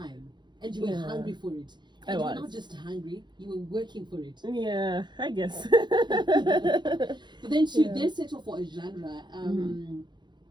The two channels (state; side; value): late; left; 0.21 ms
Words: and you were hungry for it. And you were not just hungry, you were working for it. Yeah, I guess. But then to then settle for a genre,